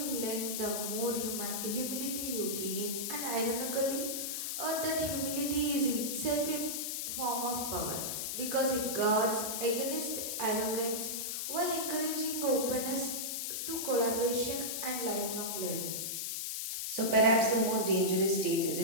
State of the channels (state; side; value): noise; left; hiss, 2 dB below the sound